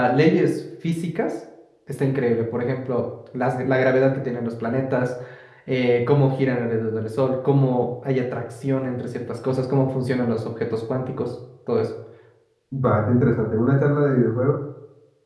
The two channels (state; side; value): identical; both; correlation 1.00